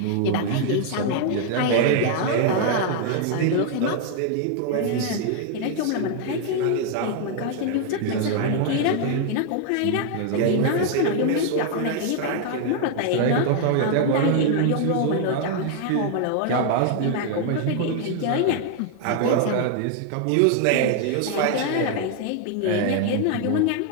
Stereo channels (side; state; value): both; different; correlation 0.00